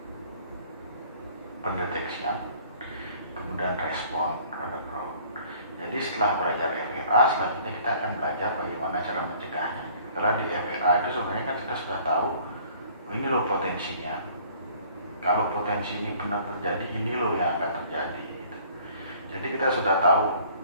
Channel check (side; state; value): both; inverted; correlation -0.55